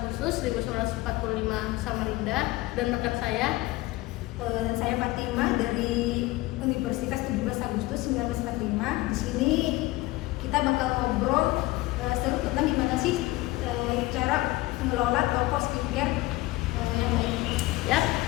1945 Samarinda dan rekan saya Fatima dari Universitas 17 Agustus 1945. Di sini kita bakal ngobrol seru tentang gimana sih cara mengelola toko skincare yang baik. ya.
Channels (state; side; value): quieter; right; 19.5 dB